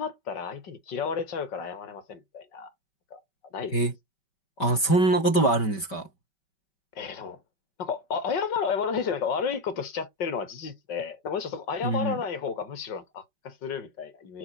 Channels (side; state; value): right; late; 5.2 ms